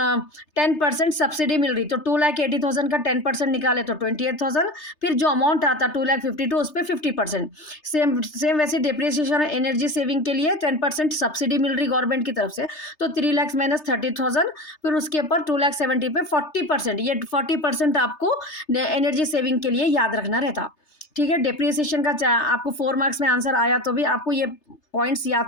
10% सब्सिडी मिल रही, तो 2,80,000 का 10% निकाले तो 28,000, फिर जो अमाउंट आता 2,52,000 उस पर 50%। सेम वैसे डिप्रिसिएशन एनर्जी सेविंग के लिए 10% सब्सिडी मिल रही गवर्नमेंट की तरफ से, तो 3 लाख माइनस 30,000, फिर उसके ऊपर 2,70,000 पे 40%, ये 40% आपको एनर्जी सेविंग के लिए याद रखना रहता, ठीक है। डिप्रिसिएशन का आपको 4 मार्क्स में आंसर आया तो भी आपको ये पॉइंट्स याद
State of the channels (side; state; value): right; late; 3.3 ms